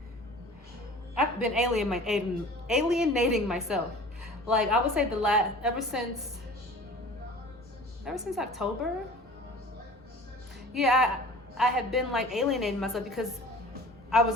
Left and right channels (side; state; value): both; normal; correlation 0.43